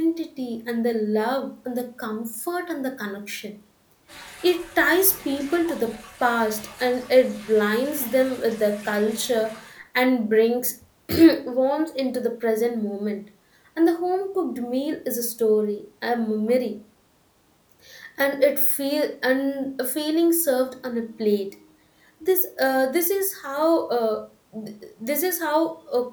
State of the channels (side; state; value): both; identical; correlation 1.00